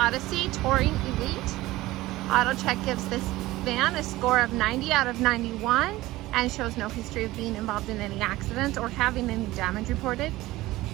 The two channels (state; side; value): quieter; left; 17.8 dB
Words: Touring Elite. AutoCheck gives this van a score of 90 out of 91 and shows no history of being involved in any accidents or having any damage reported.